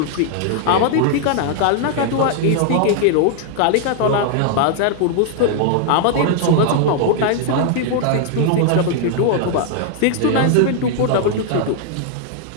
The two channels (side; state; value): both; different; correlation 0.00